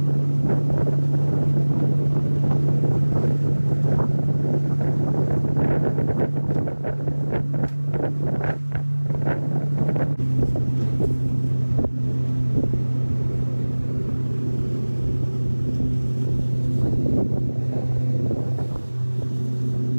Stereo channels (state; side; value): inverted; both; correlation -1.00